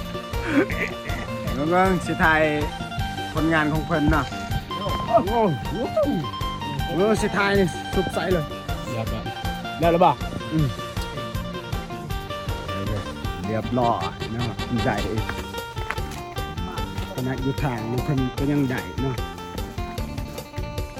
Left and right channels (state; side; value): identical; both; correlation 1.00